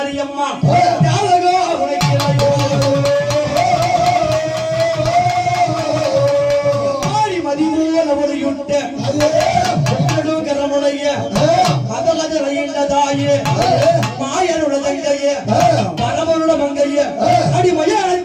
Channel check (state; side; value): identical; both; correlation 1.00